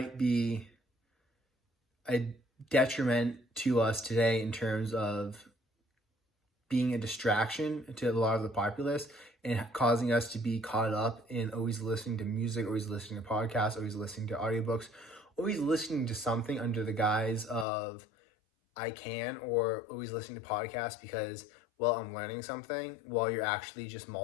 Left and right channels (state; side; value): drops out; right; at 17.7 s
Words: be a detriment to us today in terms of being a distraction to a lot of the populace and causing us to be caught up in always listening to music, always listening to podcasts, always listening to audiobooks, always listening to something under the guise of I can, or always listening to podcasts because, well, I'm learning something, while you're actually just